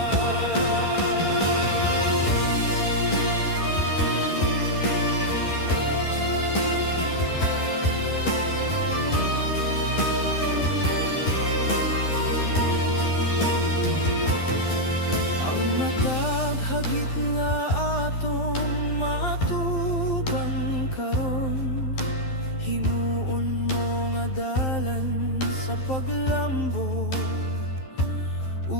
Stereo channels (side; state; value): right; late; 12 ms